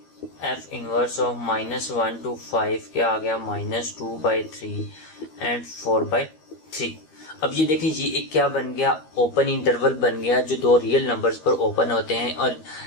एफ इनवर्स ऑफ -1 to 5 क्या आ गया, -2/3 एंड 4/3। अब ये देखिए ये एक क्या बन गया, ओपन इंटरवल बन गया जो दो रियल नंबर्स पर ओपन होते हैं। और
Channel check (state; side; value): late; right; 13 ms